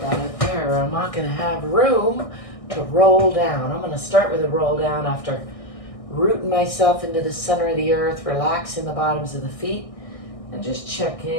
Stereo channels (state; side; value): late; right; 1.6 ms